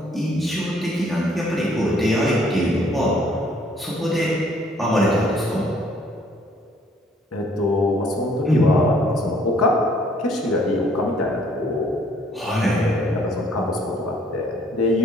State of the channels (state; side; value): normal; both; correlation 0.62